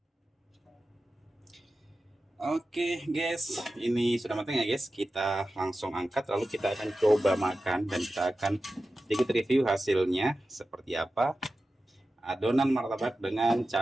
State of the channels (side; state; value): both; normal; correlation 0.93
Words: Oke guys, ini sudah matang ya guys. Kita langsung angkat, lalu kita akan coba makan dan kita akan sedikit review hasilnya seperti apa. Adonan martabak dengan